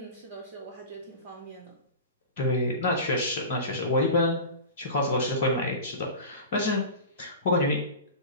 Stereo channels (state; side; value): inverted; both; correlation -0.31